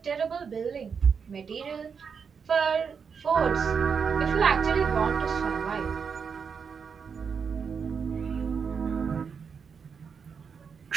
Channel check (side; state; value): left; quieter; 6.2 dB